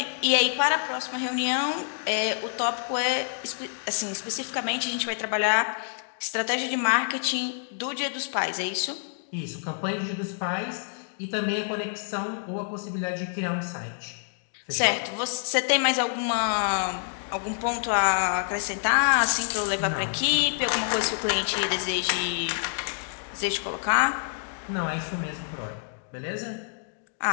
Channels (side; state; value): right; silent; digital silence